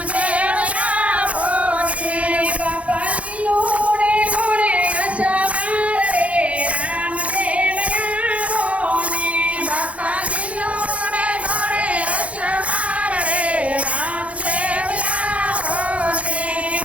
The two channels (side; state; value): left; late; 0.065 ms